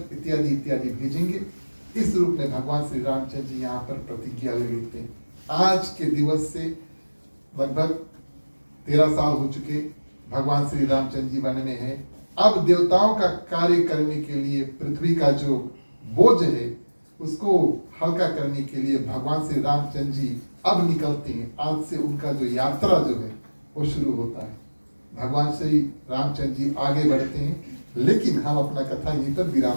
इत्यादि इत्यादि भेजेंगे। इस रूप में भगवान श्री रामचंद्र जी यहाँ पर प्रतिज्ञा ले लेते हैं। आज के दिवस से लगभग 13 साल हो चुके भगवान श्री रामचंद्र जी वन में है। अब देवताओं का कार्य करने के लिए पृथ्वी का जो बोझ है उसको हल्का करने के लिए भगवान श्री रामचंद्र जी अब निकलते हैं। आज से उनका जो यात्रा जो है वो शुरू होता है। भगवान श्री रामचंद्र जी आगे बढ़ते हैं, लेकिन हम अपना कथा यहीं पर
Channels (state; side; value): inverted; both; correlation -1.00